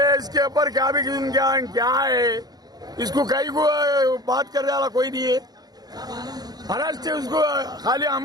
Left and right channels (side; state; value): left; late; 0.19 ms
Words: इसके ऊपर क्या भी क्या है, इसको कहीं को बात करने वाला कोई नहीं है। महाराष्ट्र से उसको खाली